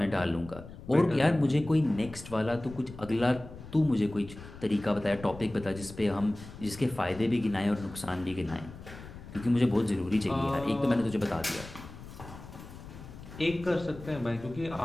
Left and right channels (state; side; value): noise; left; rumble, 15 dB below the sound